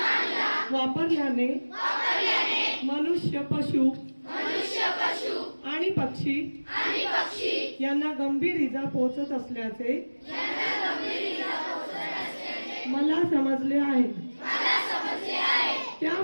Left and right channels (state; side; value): inverted; both; correlation -1.00